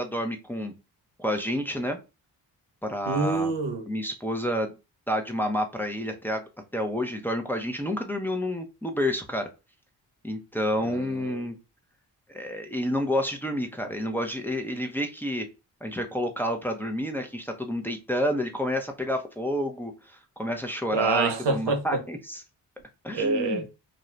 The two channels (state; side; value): normal; both; correlation 0.49